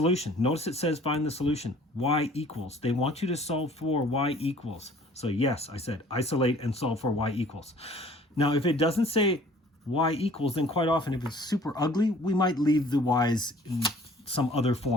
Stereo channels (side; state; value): both; normal; correlation 0.53